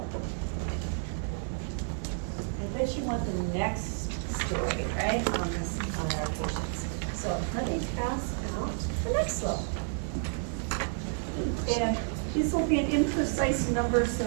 I bet you want the next story, right, on our patients. So let me pass out the next level. And this will be an imprecise number, so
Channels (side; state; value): left; silent; 57 dB below the other